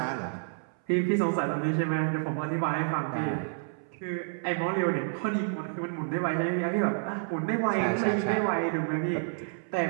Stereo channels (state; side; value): silent; left; 58 dB below the other